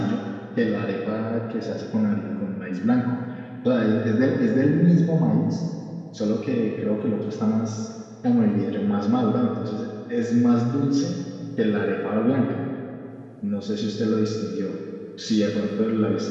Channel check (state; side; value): identical; both; correlation 1.00